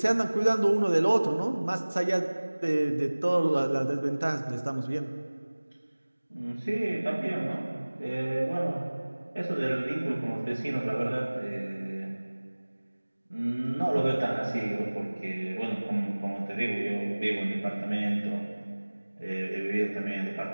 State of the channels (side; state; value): both; inverted; correlation -1.00